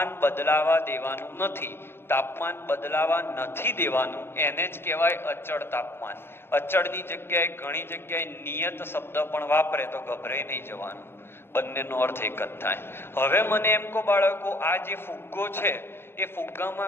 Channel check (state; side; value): late; right; 0.11 ms